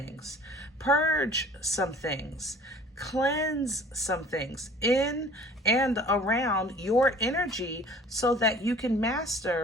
purge some things, cleanse some things in and around your energy so that you can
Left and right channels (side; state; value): both; normal; correlation 0.49